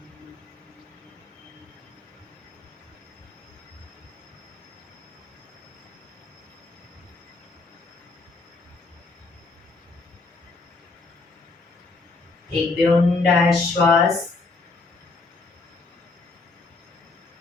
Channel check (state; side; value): quieter; right; 3.7 dB